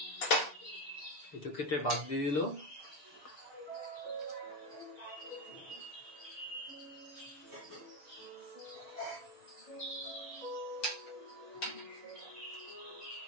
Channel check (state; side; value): late; right; 6.8 ms